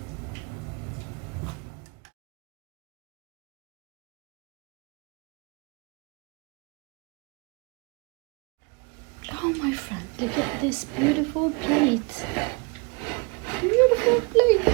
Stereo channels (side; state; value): left; quieter; 30.9 dB